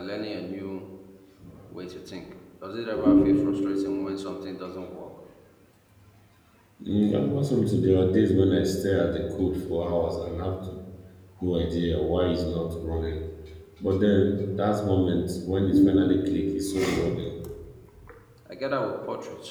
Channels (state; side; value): identical; both; correlation 1.00